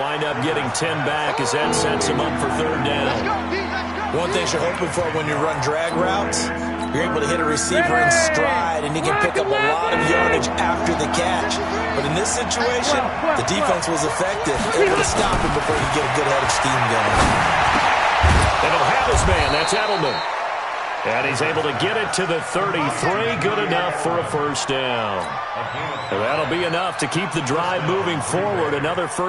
up getting 10 back as that sets him up for 3rd down. One thing you're hoping for when you run drag routes, you're able to hit a receiver in stride, and you can pick up a lot of yardage after the catch. But in this situation, the defense was effective, able to stop him before he get a good head of steam going. And he'll have his man. That's Edelman. And he's able to get it to the 33. Good enough for a first down. And that'll be enough to keep the drive moving forward. Another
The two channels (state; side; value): identical; both; correlation 1.00